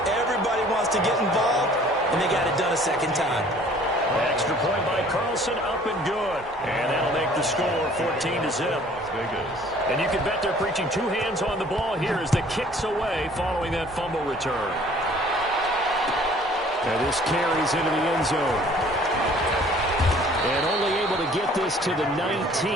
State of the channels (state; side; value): normal; both; correlation 0.53